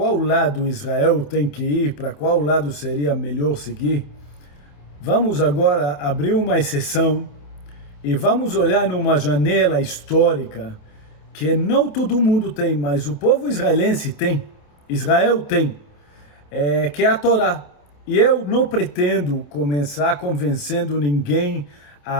lado Israel tem que ir, para qual lado seria melhor seguir, vamos agora abrir uma exceção e vamos olhar numa janela histórica que não todo mundo tem, mas o povo israelense tem, Israel tem, que é a Torá. E eu não pretendo começar convencendo ninguém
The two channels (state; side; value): late; right; 28 ms